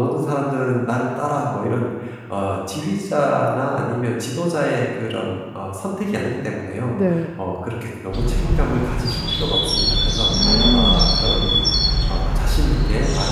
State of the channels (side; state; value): both; identical; correlation 1.00